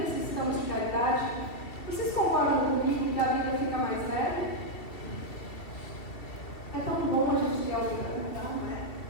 de caridade, vocês concordam comigo que a vida fica mais leve? É tão bom a gente ter alguém para contar, não é?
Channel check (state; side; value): late; right; 2.7 ms